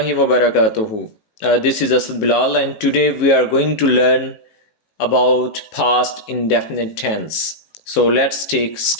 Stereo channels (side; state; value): right; late; 19 ms